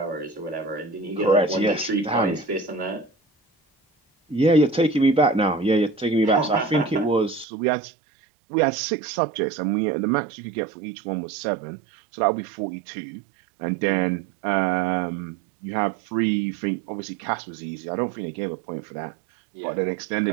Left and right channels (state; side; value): drops out; left; at 7.5 s